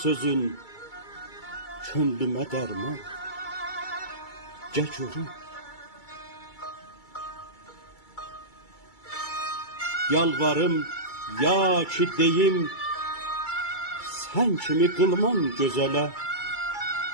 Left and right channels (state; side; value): late; right; 2.3 ms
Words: sözün, könlümə dərman, gəl görüm. Yalvarım, ya ki deyim, sən kimi qılman gözələ.